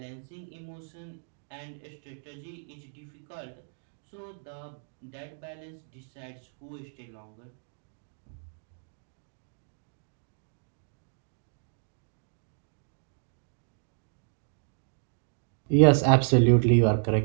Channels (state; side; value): silent; left; digital silence